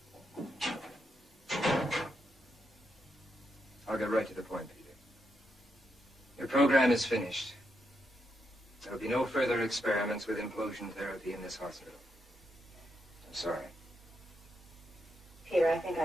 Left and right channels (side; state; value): both; normal; correlation 0.82